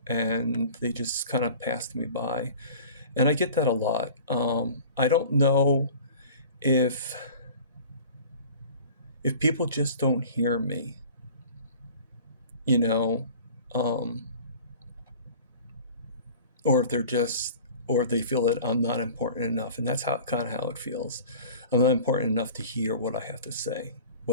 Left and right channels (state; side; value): inverted; both; correlation -0.43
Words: and they just kind of passed me by. And I get that a lot. I don't know if people just don't hear me, you know, um, or if they feel that I'm not important enough, and that's how it feels. I'm not important enough to hear what I have to say,